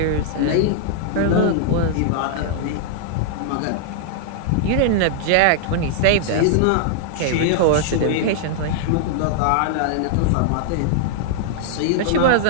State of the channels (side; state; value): both; different; correlation -0.01